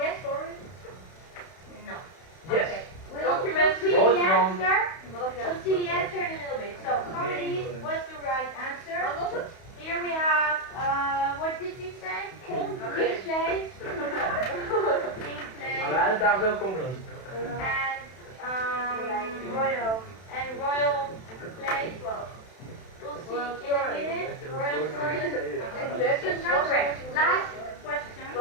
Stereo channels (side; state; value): right; late; 31 ms